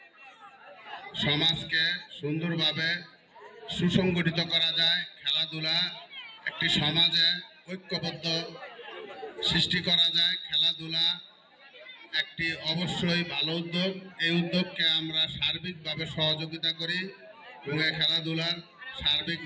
সমাজকে সুন্দরভাবে সুসংগঠিত করা যায়। খেলাধুলা একটি সমাজে ঐক্যবদ্ধ সৃষ্টি করা যায়। খেলাধুলা একটি অবশ্যই ভালো উদ্যোগ। এই উদ্যোগকে আমরা সার্বিকভাবে সহযোগিতা করি এবং এই খেলাধুলার সার্বিক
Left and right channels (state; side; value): identical; both; correlation 1.00